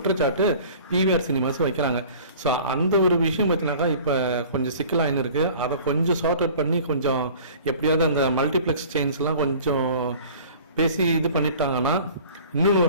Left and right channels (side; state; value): both; inverted; correlation -0.45